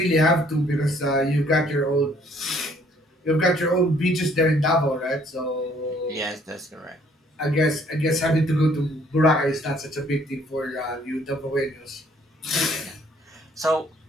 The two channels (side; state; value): both; normal; correlation 0.62